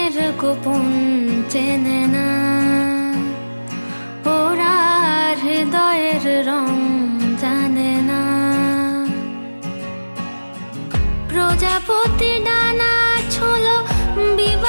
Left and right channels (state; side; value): inverted; both; correlation -1.00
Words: গোপন চেনে না, ওরা হৃদয়ের রং জানে না। প্রজাপতি ডানা ছোলো